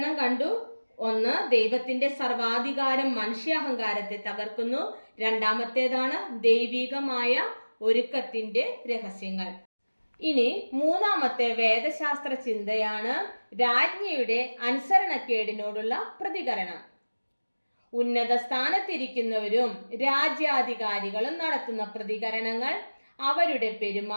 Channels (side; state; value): both; inverted; correlation -1.00